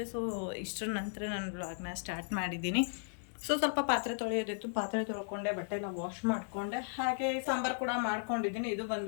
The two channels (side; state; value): right; silent; digital silence